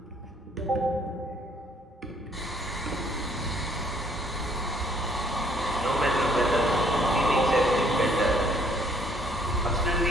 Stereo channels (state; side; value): normal; both; correlation 0.64